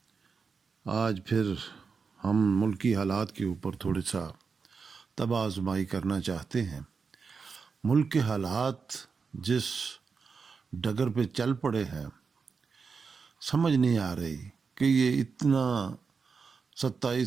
آج پھر ہم ملکی حالات کے اوپر تھوڑا سا طبع آزمائی کرنا چاہتے ہیں۔ ملک کے حالات جس ڈگر پہ چل پڑے ہیں، سمجھ نہیں آ رہی کہ یہ اتنا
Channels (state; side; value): quieter; left; 5.2 dB